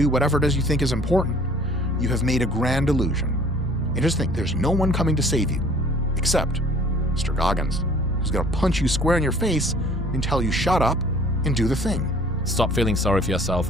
whatever it is you think is important, you have made a grand illusion. And just think, there's no one coming to save you except Mr. Goggins, who's gonna punch you square in your face and tell you shut up and do the thing. Stop feeling sorry for yourself,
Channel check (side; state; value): both; normal; correlation 0.52